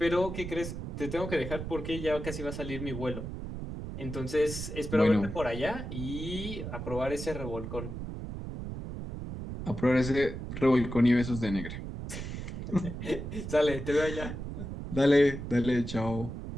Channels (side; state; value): right; noise; rumble, 7 dB below the sound